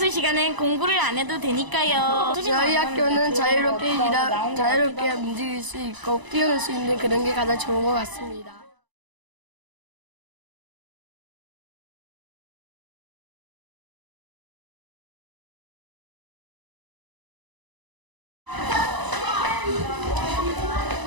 시간엔 공부를 안 해도 되니까요. 저희 학교는 자유롭게 움직일 수 있고 뛰어놀 수 있는 그런 게 가장 좋은 것 같습니다.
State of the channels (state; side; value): late; left; 1.0 ms